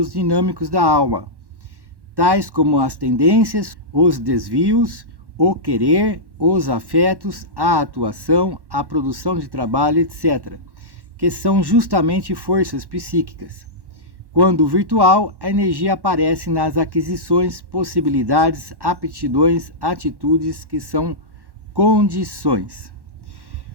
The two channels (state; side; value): late; left; 1.1 ms